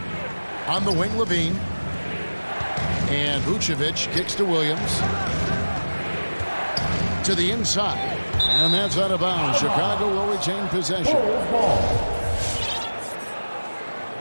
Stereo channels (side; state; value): both; inverted; correlation -1.00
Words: On the wing, Levine. And Vucevic kicks to Williams. To the inside. And that's out of bounds. Chicago will retain possession.